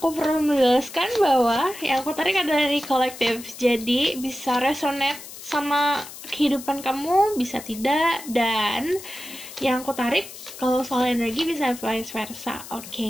perlu menjelaskan bahwa yang aku tarik adalah energi kolektif. Jadi bisa resonate sama kehidupan kamu, bisa tidak. Dan yang aku tarik kalau soal energi bisa vice versa.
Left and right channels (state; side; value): noise; left; hiss, 14 dB below the sound